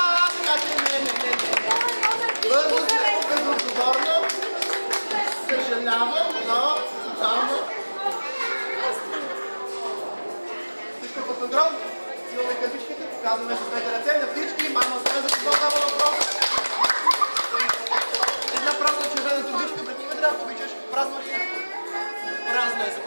Така че не. Първо Казваме с двете ръце на всички, мама сме за какво става въпрос. Една празна червена турбичка пред тебе, ако обичаш. Празно ли е? Празно е.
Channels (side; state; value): both; inverted; correlation -1.00